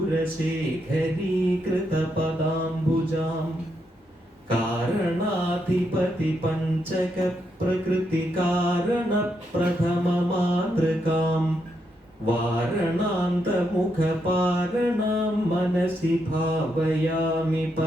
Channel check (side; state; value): both; normal; correlation 0.80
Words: കാരണാധിപതി പഞ്ചക പ്രകൃതി കാരണ പ്രഥമ മാതൃകാം വാരണാന്തമുഖപാരണാം മനസി ഭാവയാമി